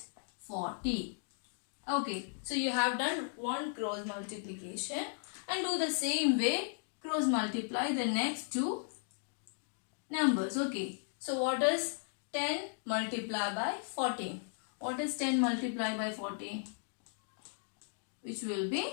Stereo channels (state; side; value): silent; right; digital silence